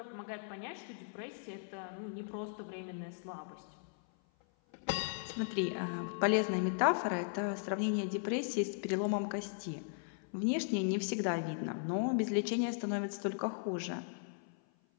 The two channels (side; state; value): right; silent; 53 dB below the other